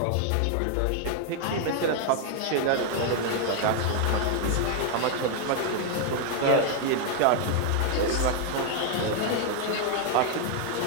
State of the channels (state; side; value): different; both; correlation 0.00